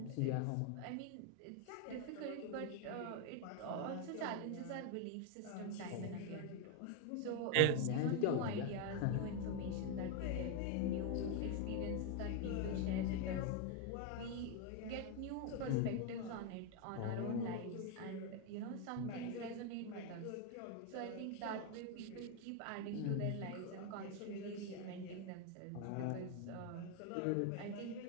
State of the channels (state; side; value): different; both; correlation 0.01